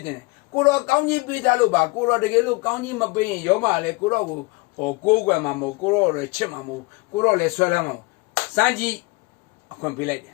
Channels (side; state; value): right; quieter; 25.9 dB